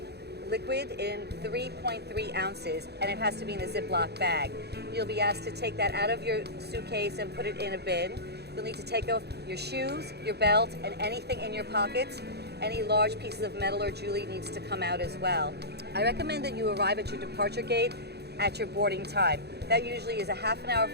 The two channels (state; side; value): late; left; 0.48 ms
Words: liquid in 3.3 ounces, and it has to be in a Ziploc bag. You'll be asked to take that out of your suitcase and put it in a bin. You'll need to take off your shoes, your belt, and anything in your pockets. Any large pieces of metal or jewelry needs to come out as well. I recommend that you arrive at your departure gate at your boarding time. That usually is a half an hour